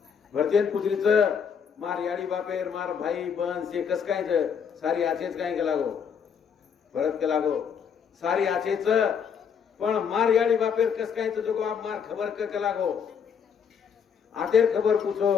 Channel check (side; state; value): right; quieter; 7.0 dB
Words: भरतेन पुजरीच मार याडी बापेर मार भाई बन से कस काय सारी आचेच काय के लागो भरत के लागो सारी आचेच पण मार याडी बापेर कस काय जो आप मार खबर के लागो आतेर खबर पूछो